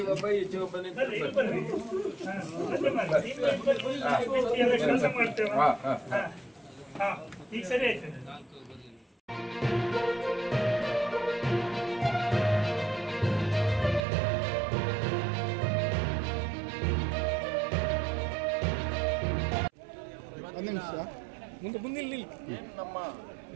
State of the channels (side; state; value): left; drops out; at 14.1 s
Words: ಒಬ್ಬ ಈಚೆಗೆ ಒಬ್ಬ ಈಗ ಸರಿ ಆಯ್ತು. ನಮ್ಮ